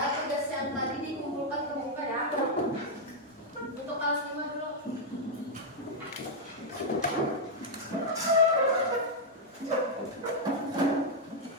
tugas yang tadi dikumpulkan ke buka ya. Untuk kelas 5 dulu.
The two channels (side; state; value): both; normal; correlation -0.03